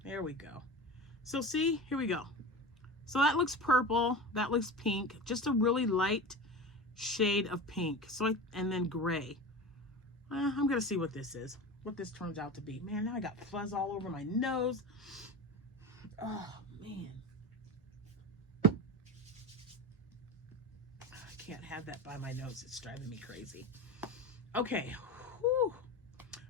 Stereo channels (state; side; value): normal; both; correlation 0.28